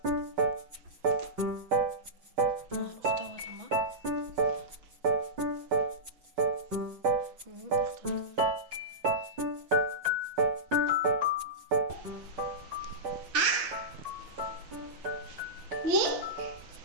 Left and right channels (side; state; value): left; late; 6.0 ms